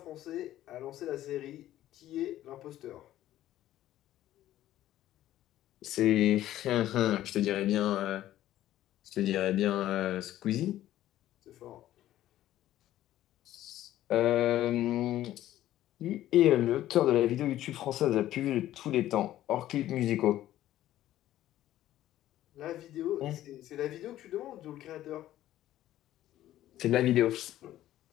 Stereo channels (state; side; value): quieter; right; 13.5 dB